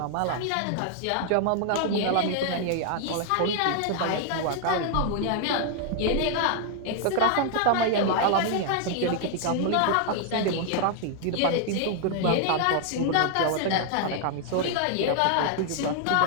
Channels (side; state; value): both; different; correlation 0.00